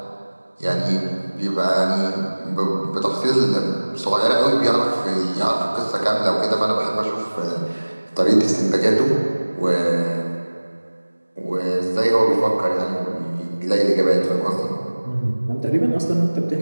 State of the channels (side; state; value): both; inverted; correlation -1.00